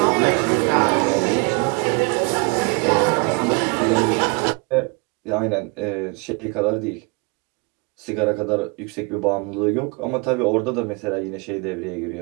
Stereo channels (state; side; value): quieter; left; 31.0 dB